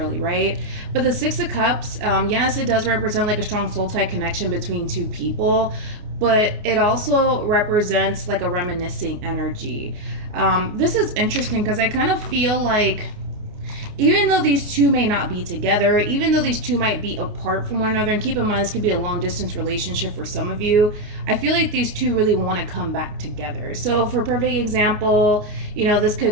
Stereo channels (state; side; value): late; left; 29 ms